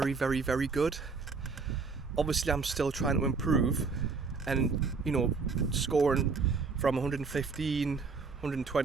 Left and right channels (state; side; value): quieter; left; 4.7 dB